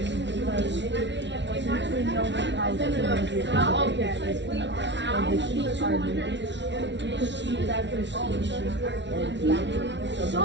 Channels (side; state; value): left; late; 0.52 ms